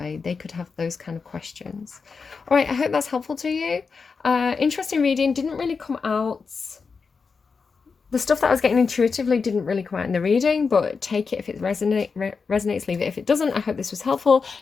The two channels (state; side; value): quieter; right; 5.1 dB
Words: They could have those kind of questions. All right, I hope that's helpful to you. Interesting reading. Didn't really come out... The stuff that I was getting intuitively didn't really come out in the reading, but take it if it resonates, leave it if it doesn't. I hope this was helpful.